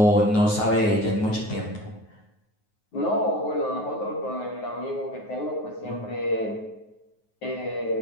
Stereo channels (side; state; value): right; late; 9.4 ms